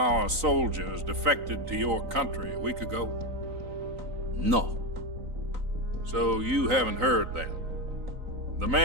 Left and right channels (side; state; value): left; late; 3.9 ms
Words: soldiers defected to your country a week ago? No. So you haven't heard then. The